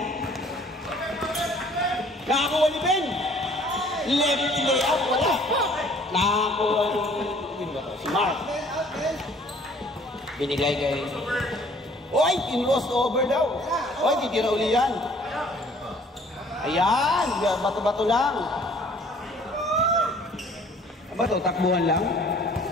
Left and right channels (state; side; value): normal; both; correlation 0.55